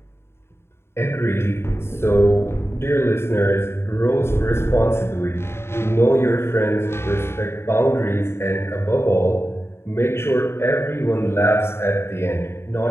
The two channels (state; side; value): late; right; 0.12 ms